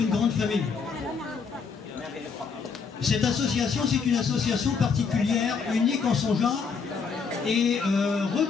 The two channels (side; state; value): right; quieter; 5.5 dB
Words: grande famille. Cette association, c'est une association particulière, unique en son genre, et